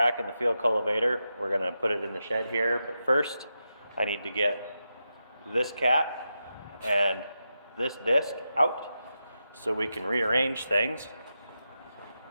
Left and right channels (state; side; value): inverted; both; correlation -0.88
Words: and the field cultivator. We're going to put it in the shed here, but first I need to get this cap and this disc out so we can rearrange things